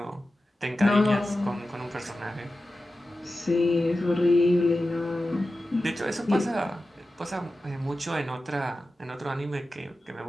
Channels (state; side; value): normal; both; correlation 0.94